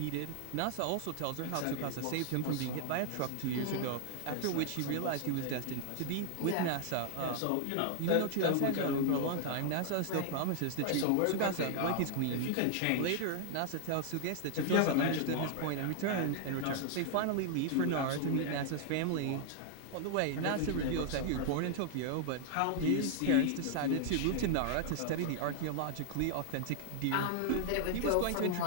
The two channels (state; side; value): different; both; correlation 0.00